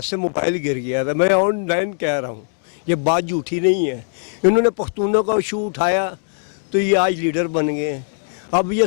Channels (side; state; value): right; silent; digital silence